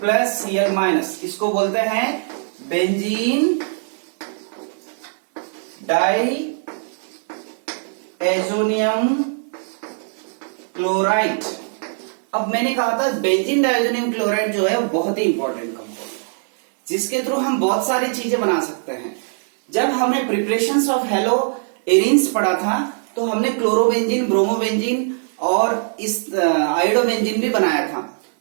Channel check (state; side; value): silent; left; digital silence